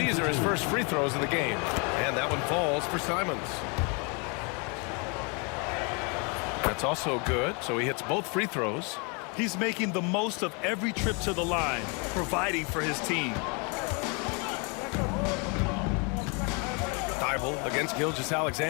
are his first free throws of the game. And that one falls for Simons. That's also good, so he hits both free throws. He's making the most of every trip to the line, providing for his team. Thibault against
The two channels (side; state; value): right; quieter; 33.1 dB